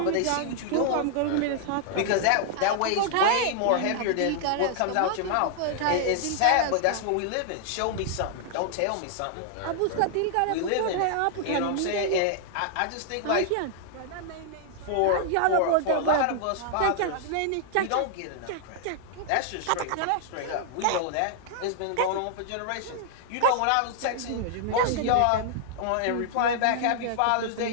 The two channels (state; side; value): different; both; correlation -0.01